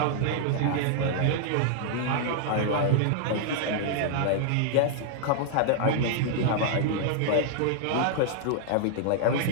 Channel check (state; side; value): different; both; correlation 0.00